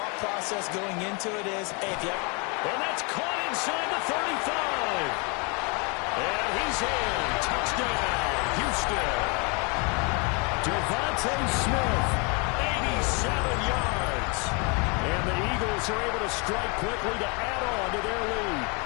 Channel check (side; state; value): right; quieter; 32.5 dB